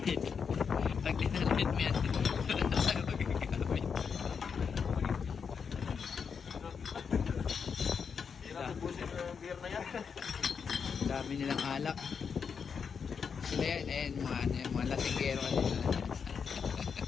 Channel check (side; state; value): right; quieter; 6.3 dB